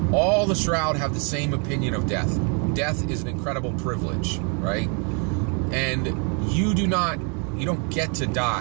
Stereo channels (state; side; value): quieter; left; 37.2 dB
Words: All the Shroud have the same opinion of death. Death is an incredible privilege, right? And you don't get to